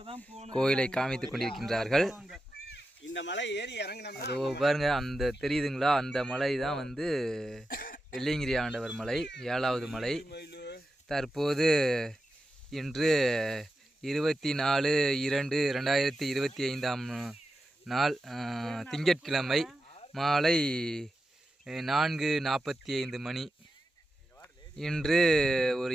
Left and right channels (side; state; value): both; normal; correlation 0.90